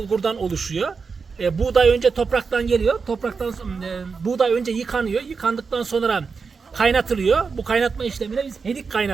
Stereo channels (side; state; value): left; quieter; 5.1 dB